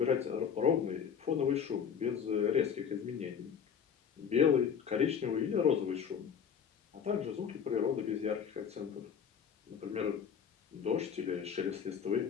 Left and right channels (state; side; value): quieter; right; 7.4 dB